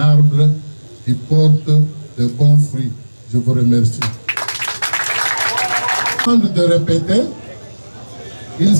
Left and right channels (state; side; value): inverted; both; correlation -1.00